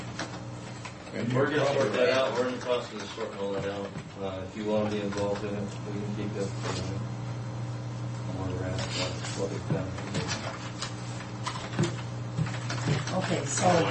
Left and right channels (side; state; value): both; identical; correlation 1.00